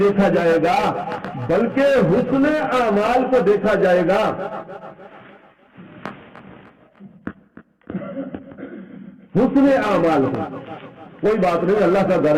دیکھا جائے گا بلکہ حسن اعمال کو دیکھا جائے گا۔ حسن اعمال کو، کوئی بات نہیں، اللہ کا گھر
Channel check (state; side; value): identical; both; correlation 1.00